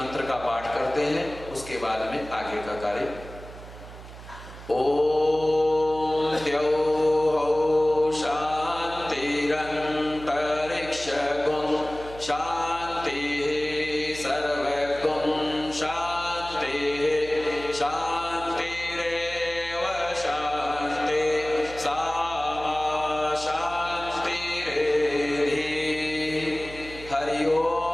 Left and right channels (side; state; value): right; noise; hum, 15 dB below the sound